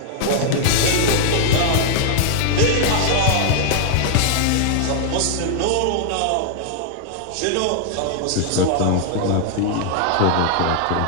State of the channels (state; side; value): different; both; correlation -0.01